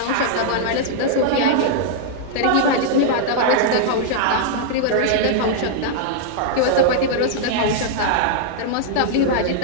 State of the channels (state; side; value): different; both; correlation -0.01